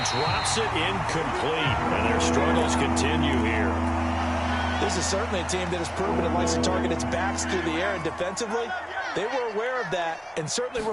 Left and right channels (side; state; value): both; identical; correlation 1.00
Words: drops it incomplete. And their struggles continue here. This is certainly a team that has proven it likes to target its backs through the air, and defensively, they were aware of that and certainly